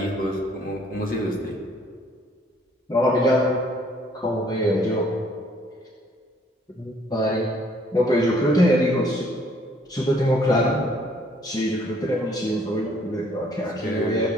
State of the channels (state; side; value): normal; both; correlation 0.62